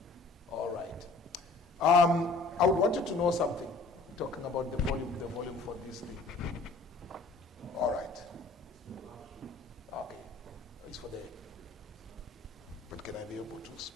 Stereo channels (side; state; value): right; quieter; 3.5 dB